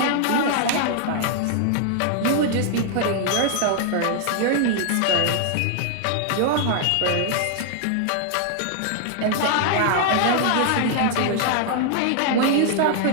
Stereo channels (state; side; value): different; both; correlation 0.00